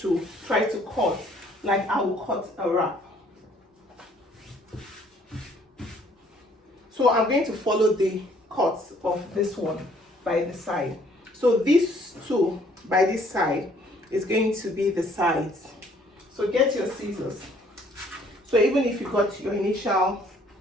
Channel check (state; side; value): normal; both; correlation 0.61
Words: try to cut like I will cut a wrap. So I'm going to follow the cuts of this one by the side. So these 2 by this side is going to be the sides. So get your scissors. So even if you got your initial